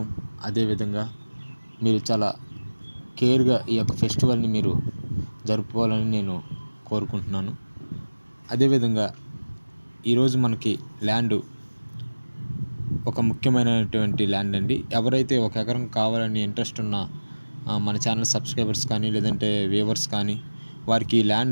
అదేవిధంగా మీరు చాలా కేర్గా ఈ యొక్క ఫెస్టివల్ని మీరు జరుపుకోవాలని నేను కోరుకుంటున్నాను. అదేవిధంగా ఈరోజు మనకి ల్యాండ్ ఒక ముఖ్యమైనటువంటి ల్యాండ్ అండి. ఎవరైతే ఒక ఎకరం కావాలని ఇంట్రెస్ట్ ఉన్న మన ఛానల్ సబ్స్క్రైబర్స్ కానీ, లేదంటే వ్యూవర్స్ కానీ, వారికి ఈ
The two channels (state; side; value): inverted; both; correlation -1.00